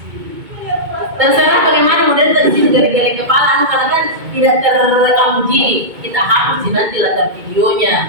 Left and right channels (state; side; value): late; left; 2.2 ms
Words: Terserah bagaimana model tadi geleng-geleng kepala, karena kan tidak terekam uji. Kita hapus nanti latar